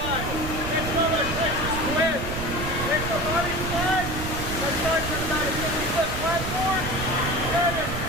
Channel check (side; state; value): right; noise; rumble, 5 dB below the sound